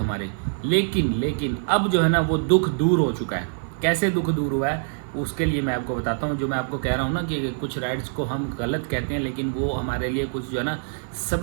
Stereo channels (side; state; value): left; silent; 55 dB below the other